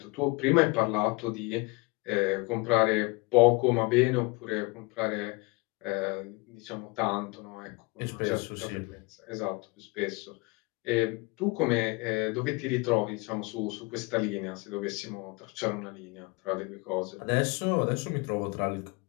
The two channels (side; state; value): right; quieter; 26.3 dB